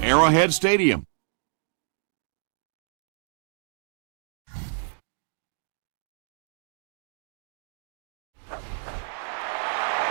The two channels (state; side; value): silent; left; digital silence